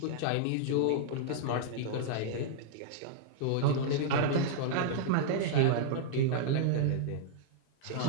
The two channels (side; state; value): both; different; correlation -0.01